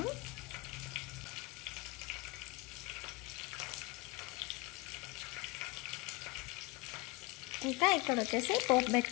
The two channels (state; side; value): quieter; right; 24.6 dB